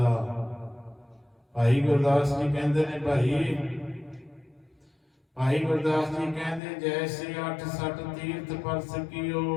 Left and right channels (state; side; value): drops out; right; at 6.6 s